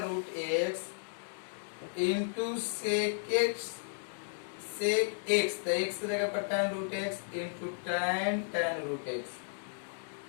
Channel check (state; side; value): silent; right; digital silence